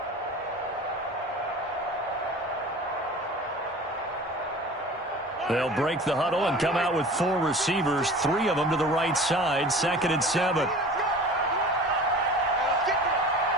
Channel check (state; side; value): normal; both; correlation 0.40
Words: They'll break the huddle and come out with 4 receivers, 3 of them to the right side, 2nd and 7.